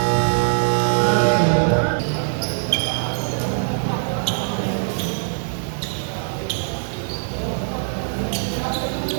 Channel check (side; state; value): left; silent; 58 dB below the other